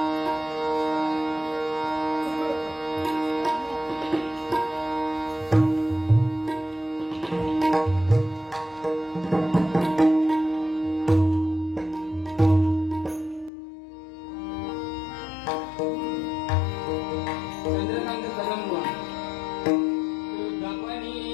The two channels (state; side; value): drops out; right; at 13.5 s